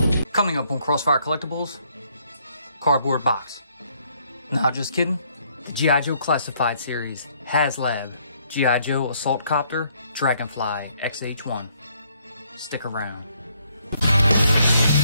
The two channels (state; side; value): inverted; both; correlation -0.68